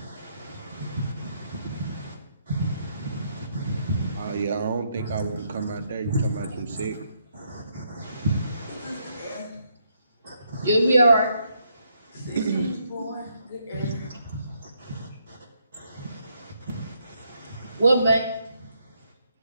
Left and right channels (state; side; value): inverted; both; correlation -0.75